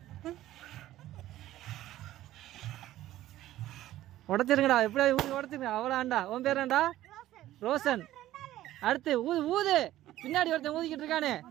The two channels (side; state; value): left; quieter; 14.4 dB